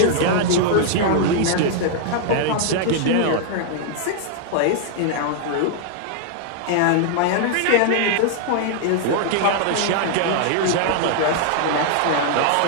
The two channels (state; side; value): different; both; correlation -0.01